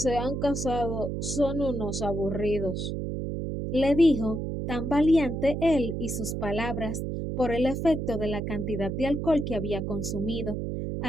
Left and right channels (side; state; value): right; noise; hum, 3 dB below the sound